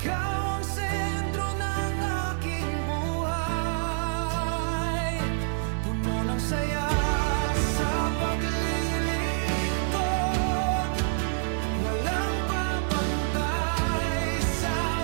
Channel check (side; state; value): left; silent; digital silence